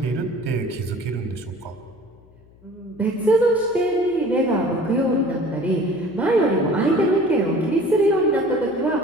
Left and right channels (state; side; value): noise; left; hum, 27 dB below the sound